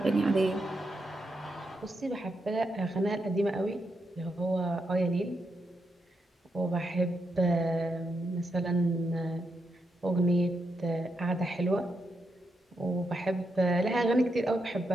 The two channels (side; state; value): both; normal; correlation 0.83